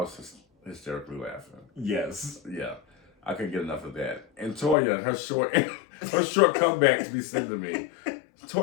just hysterically laughing. Yes. Yeah. I couldn't get enough of that. And Toya, her short comeback to be sent to me.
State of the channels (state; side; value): drops out; right; at 4.8 s